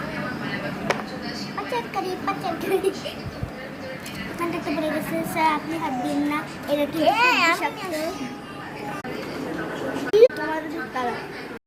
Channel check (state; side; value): identical; both; correlation 1.00